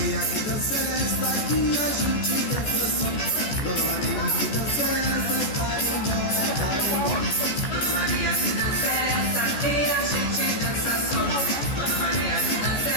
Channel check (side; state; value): right; late; 14 ms